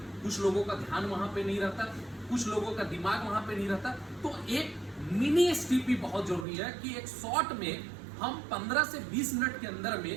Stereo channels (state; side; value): drops out; left; at 6.5 s